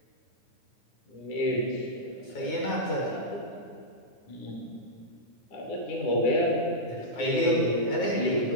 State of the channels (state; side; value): late; right; 9.4 ms